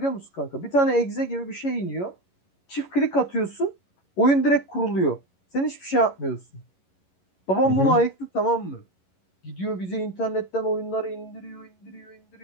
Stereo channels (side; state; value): right; late; 11 ms